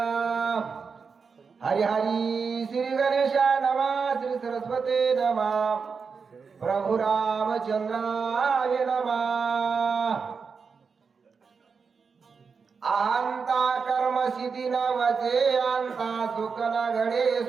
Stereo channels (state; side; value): quieter; left; 5.4 dB